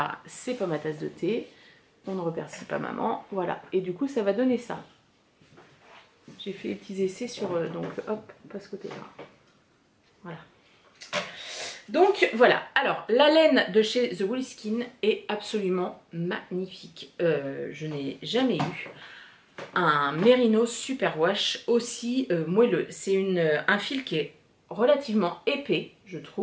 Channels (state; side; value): identical; both; correlation 1.00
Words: c'est pas ma tasse de thé. On ne remercie pas maman. Voilà. Et du coup, ça va donner ça. J'ai fait des petits essais sur... donc, hop, pas ce côté-là. Voilà. Donc voilà, alors la laine de chez The Woolly Skin est absolument magnifique. Je n'ai jamais eu un Merino Superwash aussi moelleux. C'est un fil qui est relativement épais, je